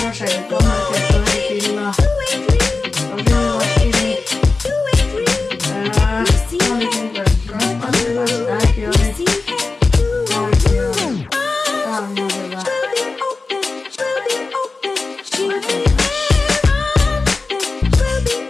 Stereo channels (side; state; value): right; quieter; 3.8 dB